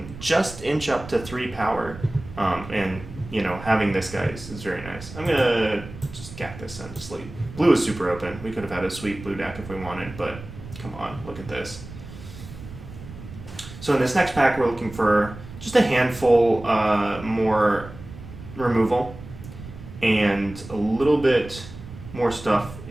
just inch up to 3 power, and you know, having this guy is very nice. I'm gonna just gap this and sleep. Blue is super open. We could have had a sweet blue deck if we wanted, but come on, look at this. So in this next pack, we're looking for just a handful more removal and a little bit more stuff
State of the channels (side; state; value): right; noise; rumble, 14 dB below the sound